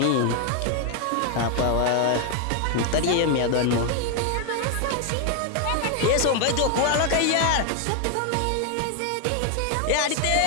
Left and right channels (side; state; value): both; different; correlation 0.00